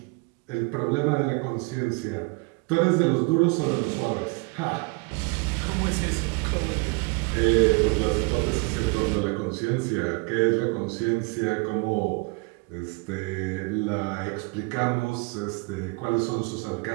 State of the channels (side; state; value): left; quieter; 28.3 dB